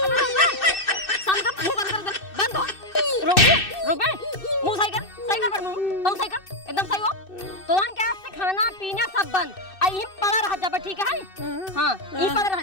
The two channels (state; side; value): late; right; 2.6 ms